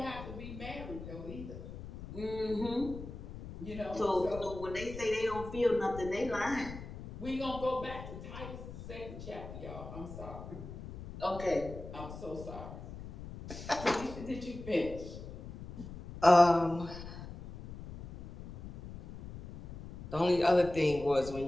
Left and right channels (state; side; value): noise; left; rumble, 12 dB below the sound